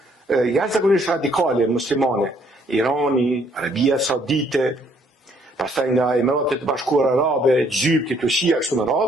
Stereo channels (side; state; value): both; normal; correlation 0.66